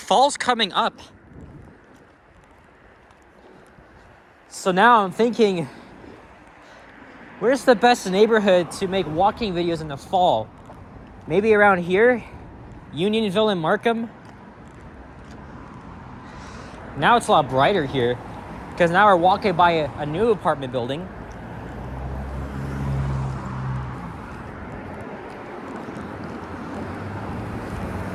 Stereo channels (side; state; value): both; identical; correlation 1.00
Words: coming up. So now I'm thinking, where's the best neighborhood to make walking videos in the fall? Maybe around here? Unionville and Markham? Now it's a lot brighter here, because now we're walking by a new apartment building.